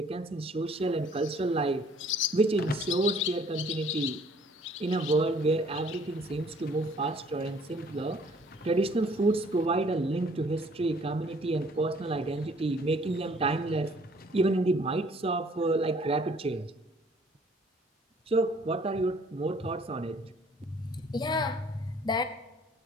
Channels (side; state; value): both; normal; correlation 0.58